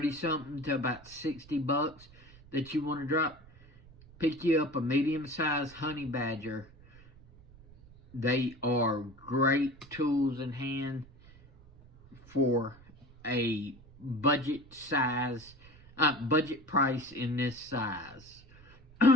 something to about 60 bucks that you want to drop, pick you up a medium-sized honey badger. They are great tools in hand for a budget size, budget price in this size.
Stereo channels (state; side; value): noise; right; rumble, 23 dB below the sound